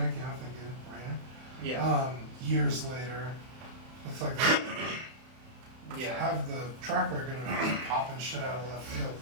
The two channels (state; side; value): late; left; 31 ms